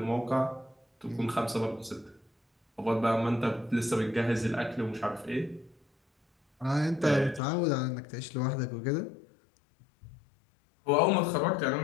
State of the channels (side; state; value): right; drops out; at 7.4 s